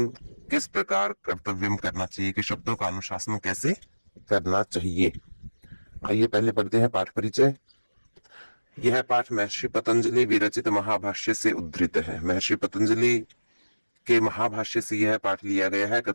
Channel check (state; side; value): inverted; both; correlation -1.00